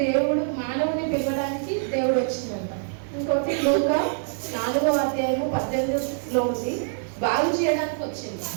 దేవుడు మానవుని పిలవడానికి దేవుడు వచ్చిందంట. ఇంకోటి లూకా 4:18 ఉంది, బాగు చేయడానికి వచ్చింది.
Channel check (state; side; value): silent; left; digital silence